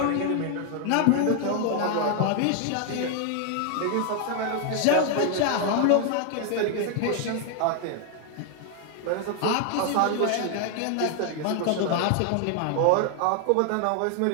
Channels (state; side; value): different; both; correlation 0.00